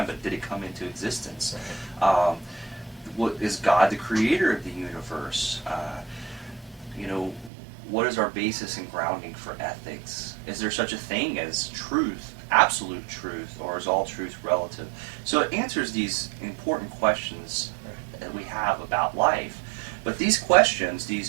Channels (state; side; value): drops out; left; at 7.5 s